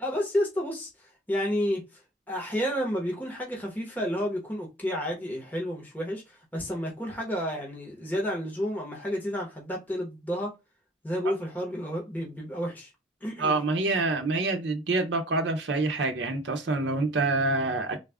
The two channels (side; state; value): both; normal; correlation 0.49